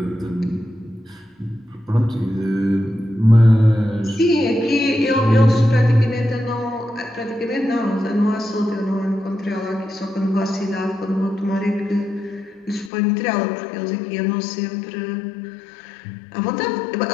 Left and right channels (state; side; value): drops out; right; at 12.9 s